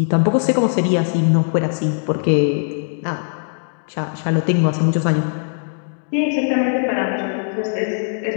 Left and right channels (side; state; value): right; silent; digital silence